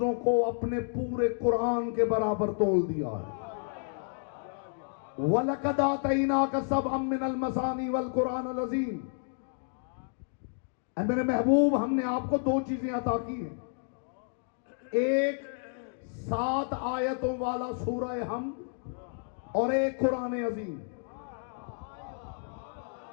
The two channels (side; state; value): right; silent; 57 dB below the other